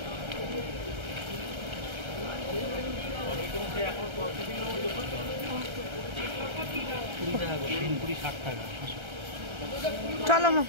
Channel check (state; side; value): late; left; 1.3 ms